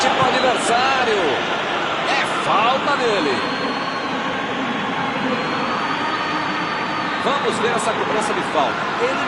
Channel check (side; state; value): both; identical; correlation 1.00